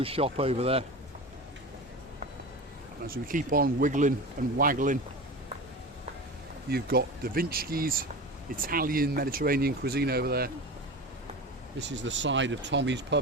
shop over there. And as we keep on wiggling and waggling, you've got Da Vinci's Italian Mediterranean cuisine over there. This is the side of Tommy's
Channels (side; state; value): both; normal; correlation 0.29